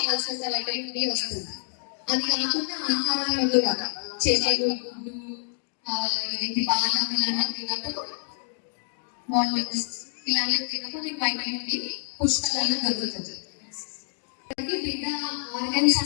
వైటమిన్ డి వస్తుంది. అది కాకుండా ఆహారంలో కూడా చేపలు, గుడ్డు, బాదం ఇలాంటివి తిన్నప్పుడు, వాల్నట్స్ ఇలాంటివి తిన్నప్పుడు మీకు వైటమిన్ డి పుష్కలంగా దొరుకుతుంది. బిడ్డ ఆర్గన్స్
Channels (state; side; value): silent; right; 57 dB below the other